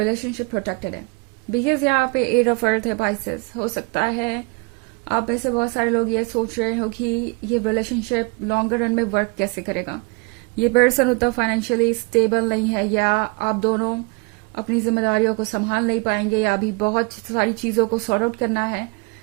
प्रोटेक्टेड है, बिकॉज यहाँ पे 8 ऑफ अर्थ है पाइसेस। हो सकता है आप में से बहुत सारे लोग ये सोच रहे हो कि ये रिलेशनशिप लॉन्गर रन में वर्क कैसे करेगा। ये पर्सन उतना फाइनेंशियली स्टेबल नहीं है, या आप दोनों अपनी जिम्मेदारियों को संभाल नहीं पाएंगे या अभी बहुत सारी चीज़ों को सॉर्ट आउट करना है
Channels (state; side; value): quieter; left; 28.8 dB